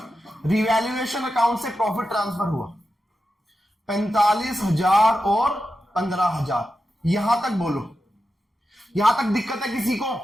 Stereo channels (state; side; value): normal; both; correlation 0.90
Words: रिवैल्यूएशन अकाउंट से प्रॉफिट ट्रांसफर हुआ 45,000 और 15,000। यहां तक बोलो, यहां तक दिक्कत है किसी को?